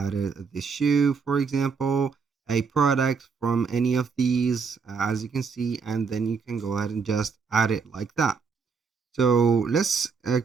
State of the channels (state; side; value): quieter; left; 5.4 dB